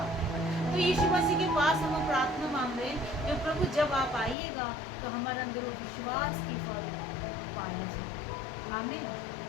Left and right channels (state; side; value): drops out; right; at 4.4 s